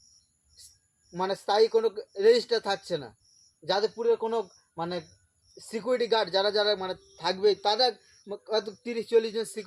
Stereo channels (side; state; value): both; identical; correlation 1.00